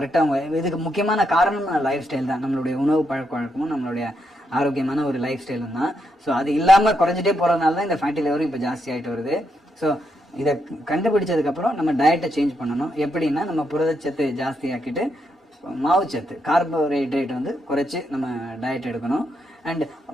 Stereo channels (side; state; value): both; normal; correlation 0.80